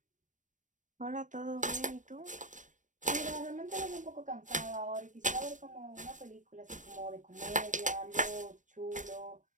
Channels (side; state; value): left; late; 0.37 ms